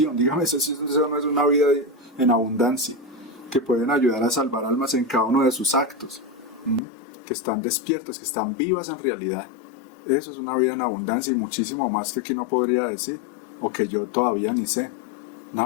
Dígame, eso no es una vida en abundancia, que pueden ayudar a salvar almas en cada uno de sus actos, que están despiertas, que están vivas en realidad. Eso es una vida en abundancia y muchísimo más que aquí no podría decir, o que yo todavía ni sé.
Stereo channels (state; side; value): drops out; right; at 6.8 s